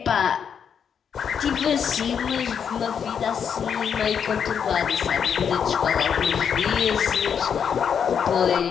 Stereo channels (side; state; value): right; quieter; 7.4 dB